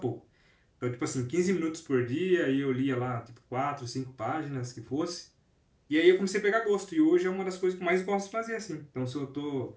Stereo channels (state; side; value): identical; both; correlation 1.00